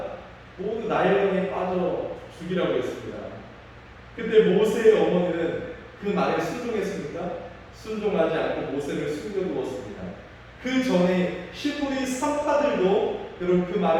모두 나일강에 빠져 죽이라고 했습니다. 그때 모세의 어머니는 그 말에 순종했습니까? 순종하지 않고 모세를 숨겨두었습니다. 그 전에 히브리 산파들도 여러분 그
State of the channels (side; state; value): both; identical; correlation 1.00